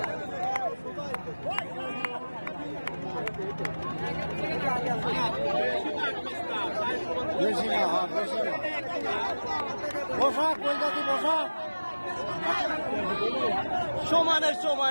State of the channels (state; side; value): inverted; both; correlation -1.00